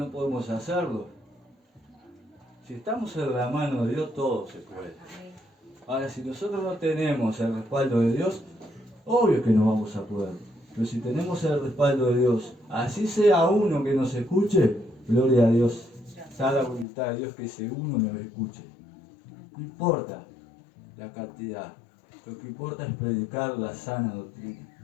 podemos hacerlo. Si estamos en la mano de Dios, todo se puede. Amén. Ahora, si nosotros no tenemos el respaldo de Dios, obvio que no vamos a poder. Pero si tenemos el respaldo de Dios, así sea uno que nos escuche, gloria a Dios. Está la voluntad de Dios que ese uno nos escuche. No importa la cantidad. Lo que importa es predicar la sana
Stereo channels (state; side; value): drops out; right; at 16.9 s